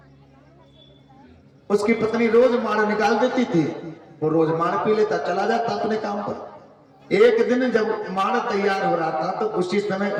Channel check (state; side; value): identical; both; correlation 1.00